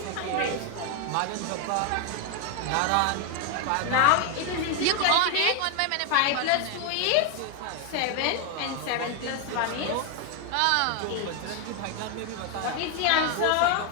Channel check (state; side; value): different; both; correlation 0.01